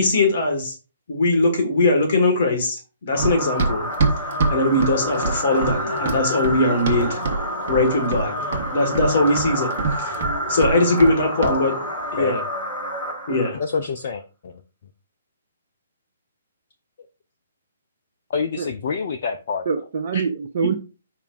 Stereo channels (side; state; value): both; inverted; correlation -0.57